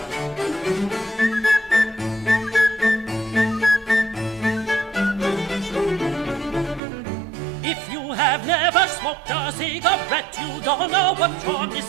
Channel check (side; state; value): left; drops out; at 6.8 s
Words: If you have never smoked a cigarette, you don't know what you're